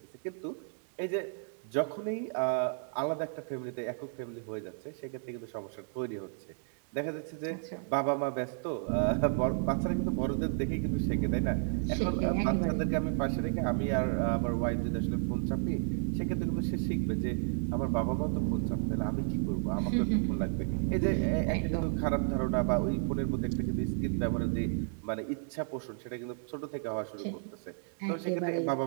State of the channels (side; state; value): left; silent; digital silence